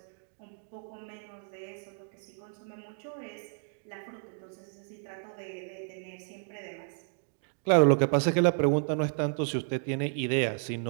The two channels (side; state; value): left; silent; digital silence